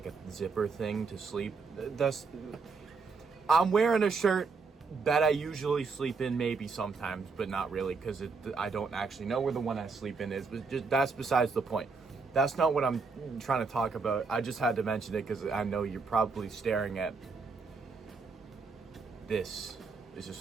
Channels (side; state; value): left; quieter; 4.6 dB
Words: a zipper thing to sleep. I'm wearing a shirt that I usually sleep in, maybe sometimes, but not really, because I don't actually know where the one I sleep in is. But that's besides the point. That's not what I'm trying to talk about. I just had to mention it because I know you're probably staring at this. It's just